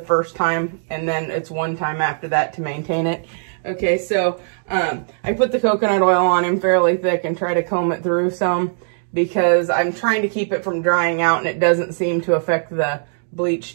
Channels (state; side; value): silent; left; digital silence